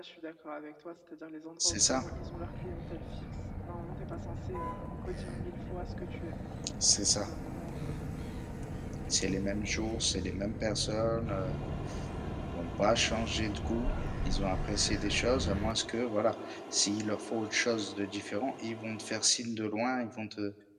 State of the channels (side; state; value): both; identical; correlation 1.00